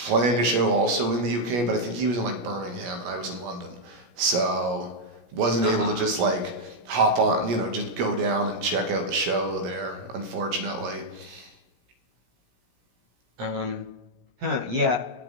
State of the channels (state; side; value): late; left; 17 ms